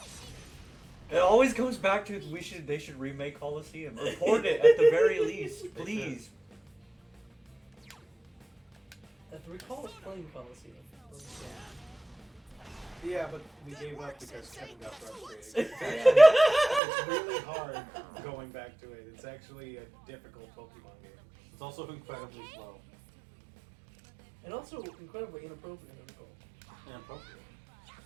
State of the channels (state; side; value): drops out; left; at 16.8 s